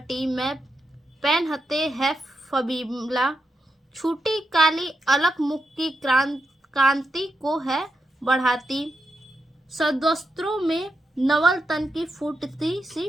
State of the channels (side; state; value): both; normal; correlation 0.85